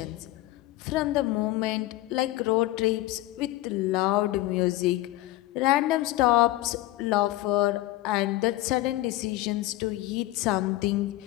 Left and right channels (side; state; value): right; quieter; 17.3 dB